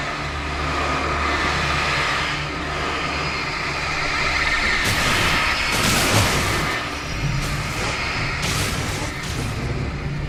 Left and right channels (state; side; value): identical; both; correlation 1.00